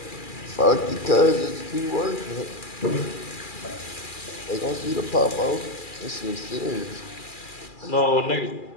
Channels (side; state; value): right; late; 2.4 ms